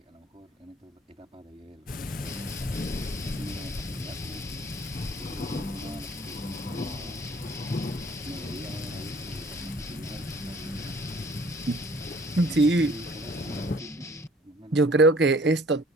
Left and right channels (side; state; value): both; normal; correlation 0.55